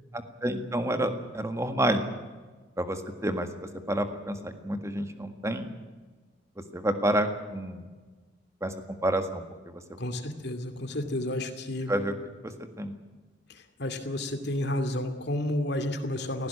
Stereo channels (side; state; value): both; normal; correlation 0.62